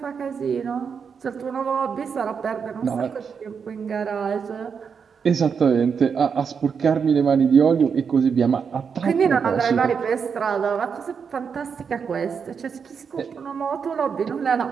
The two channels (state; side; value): quieter; left; 6.3 dB